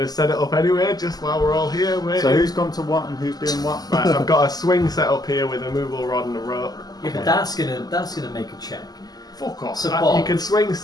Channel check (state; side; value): late; right; 0.19 ms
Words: to set it up anyway, just while we're all here waiting. So who's gone to what and who's doing what? Right, I've got a swing set up here with a movable rod and a rope. yeah, but that's gonna make a check. Fuck off. Support. You can swing